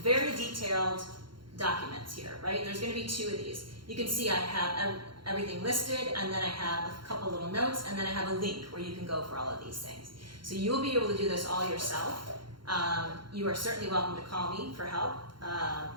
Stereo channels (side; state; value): left; late; 0.73 ms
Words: very detailed documents here, right? There's going to be 2 of these. you can see I have everything listed, and then I have a couple little notes, and then I have a link where you can go for all of these things. So you'll be able to do this all yourself. You are certainly welcome to call me for help